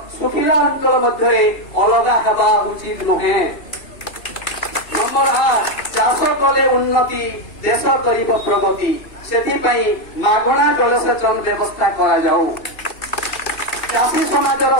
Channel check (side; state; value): right; late; 2.7 ms